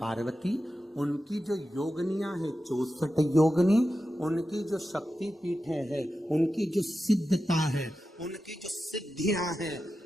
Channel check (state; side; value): normal; both; correlation 0.91